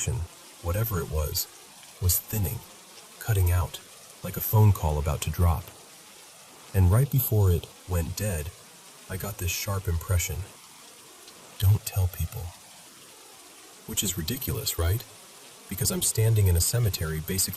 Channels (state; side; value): identical; both; correlation 1.00